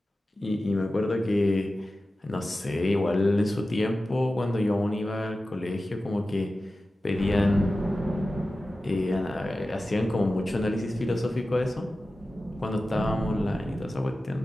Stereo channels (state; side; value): normal; both; correlation 0.94